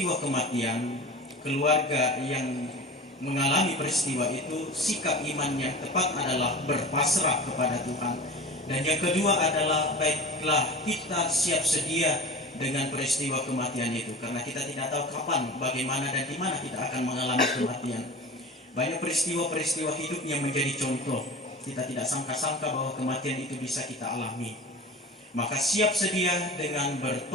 kematian, keluarga yang mengalami peristiwa itu, sikap iman yang tepat adalah berpasrah kepada Tuhan. Dan yang kedua adalah baiklah kita siap sedia dengan peristiwa kematian itu, karena kita tidak tahu kapan, bagaimana dan di mana kita akan mengalami kematian. Banyak peristiwa-peristiwa hidup yang menjadi contoh. Kita tidak sangka-sangka bahwa kematian itu bisa kita alami. Maka siap sedia dengan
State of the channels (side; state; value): both; normal; correlation 0.35